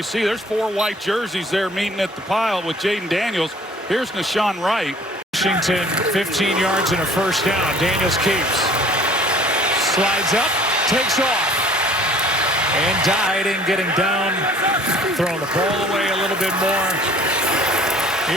see there's 4 white jerseys there meeting at the pile with Jaden Daniels. Here's Nashawn Wright. Washington 15 yards and a first down. Daniels keeps. Slides up. Takes off. And Diding getting down. Throwing the ball away a little bit more.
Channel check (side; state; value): both; normal; correlation 0.52